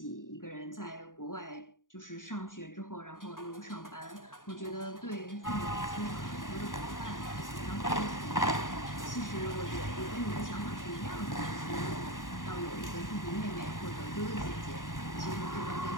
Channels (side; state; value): right; late; 0.89 ms